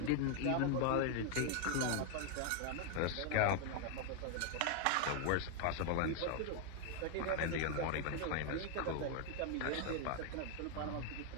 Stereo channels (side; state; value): both; different; correlation 0.00